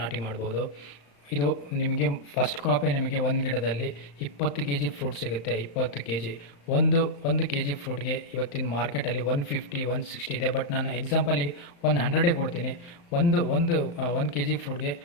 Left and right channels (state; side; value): late; right; 35 ms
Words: ನಾಟಿ ಮಾಡ್ಬೋದು. ಇದು ನಿಮಗೆ ಫಸ್ಟ್ ಕ್ರಾಪೇ ನಿಮಗೆ 1 ಗಿಡದಲ್ಲಿ 20 kg ಫ್ರೂಟ್ ಸಿಗುತ್ತೆ. 20 kg ಒಂದು kg ಫ್ರೂಟ್ಗೆ ಇವತ್ತಿನ ಮಾರ್ಕೆಟಲ್ಲಿ 150 160 ಇದೆ. ಬಟ್ ನಾನು ಎಕ್ಸಾಂಪಲಿಗೆ 100 ಕೊಡ್ತೀನಿ. ಒಂದು kg ಫ್ರೂಟ್ಗೆ